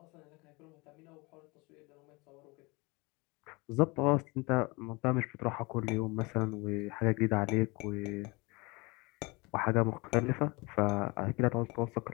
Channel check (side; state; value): right; quieter; 26.1 dB